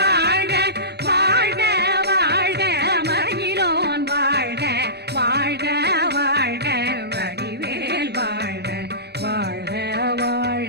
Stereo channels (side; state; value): left; late; 0.48 ms